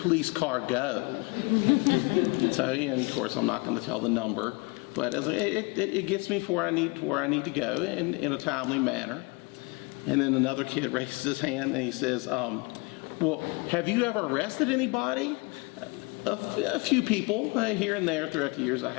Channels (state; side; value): quieter; right; 27.5 dB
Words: car go?" So, and of course, I'm not going to tell the number, but it gets me to where I need to go in a timely manner. And then another kid raises his hand and he says, "Well, have you ever arrested anybody?" A few people here and there throughout the years I